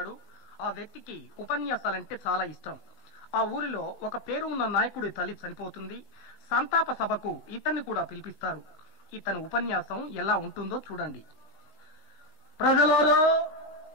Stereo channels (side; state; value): right; late; 19 ms